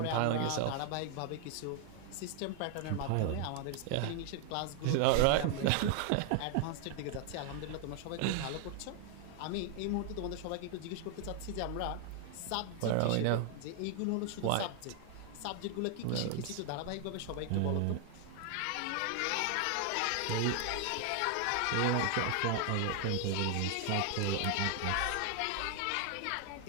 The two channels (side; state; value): both; different; correlation 0.00